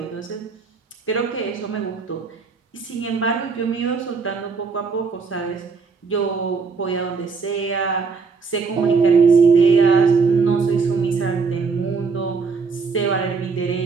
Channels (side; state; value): left; quieter; 4.9 dB